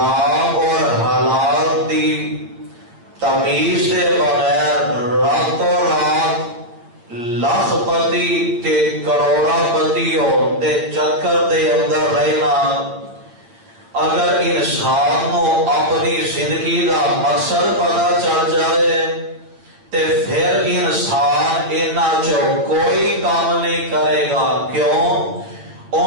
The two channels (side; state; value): left; late; 8.6 ms